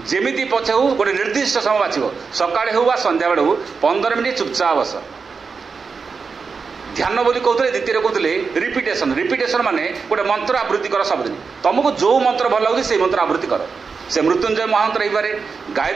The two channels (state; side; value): quieter; left; 5.1 dB